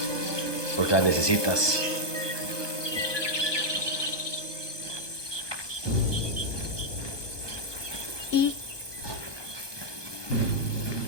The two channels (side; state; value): right; late; 1.2 ms